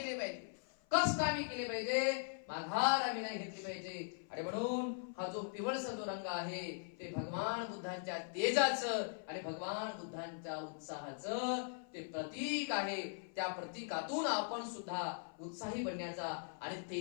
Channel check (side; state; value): right; silent; 51 dB below the other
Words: पाहिजे, कष्ट आम्ही केले पाहिजे, माघार आम्ही नाही घेतली पाहिजे. आणि म्हणून हा जो पिवळसा जो रंग आहे ते भगवान बुद्धांच्या तेजाचं आणि भगवान बुद्धांच्या उत्साहाचं ते प्रतीक आहे. त्या प्रतीकातून आपण सुद्धा उत्साही बनण्याचा आणि